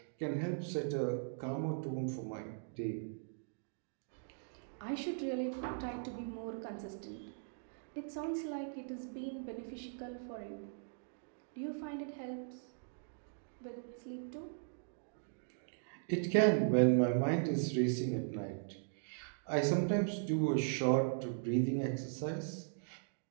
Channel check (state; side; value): silent; left; digital silence